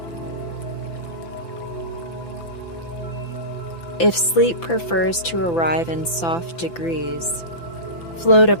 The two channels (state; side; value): late; right; 5.9 ms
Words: If sleep prefers to arrive in soft degrees, float